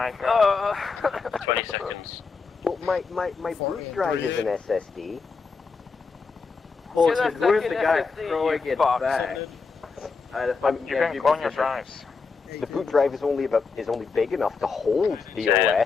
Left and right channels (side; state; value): right; quieter; 4.8 dB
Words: god. 20 seconds. Well, my boot drive is an SSD. Bullshit, where's the guy throwing it fuck. back? You can clone your drives. The boot drive is only big enough to hold the